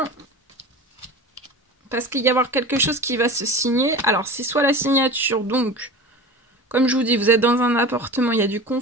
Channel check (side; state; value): both; normal; correlation 0.33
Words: Parce qu'il va y avoir quelque chose qui va se signer. Alors, c'est soit la signature, donc, comme je vous dis, vous êtes dans un appartement, il y a du